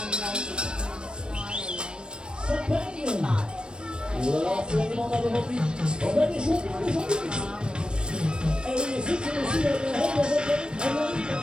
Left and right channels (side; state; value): left; late; 0.053 ms